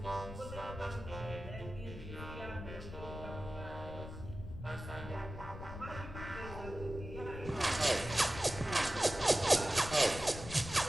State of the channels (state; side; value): noise; left; rumble, 10 dB below the sound